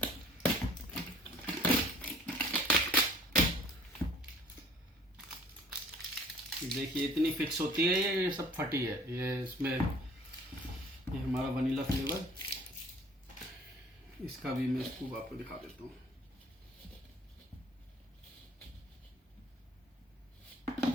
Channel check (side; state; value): both; normal; correlation 0.52